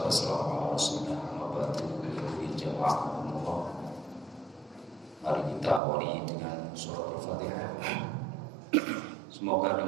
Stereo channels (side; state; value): left; drops out; at 5.8 s